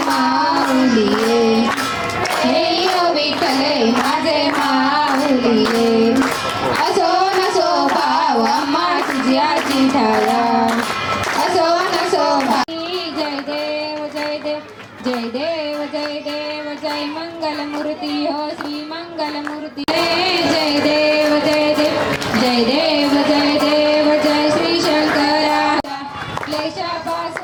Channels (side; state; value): both; identical; correlation 1.00